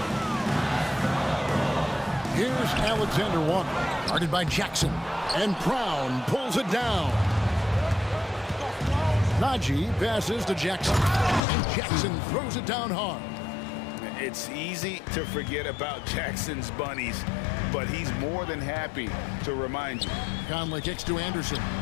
Here's Alexander Walker, guarded by Jackson. And Brown pulls it down. Najee passes to Jackson. And Jackson throws it down hard. It's easy to forget about Jackson's bunnies, but he's more than happy to remind you. Conley kicks to Anderson.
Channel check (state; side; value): drops out; right; at 11.4 s